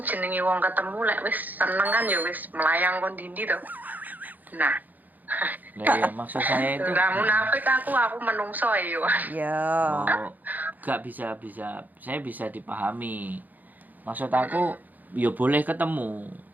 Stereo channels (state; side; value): late; left; 0.083 ms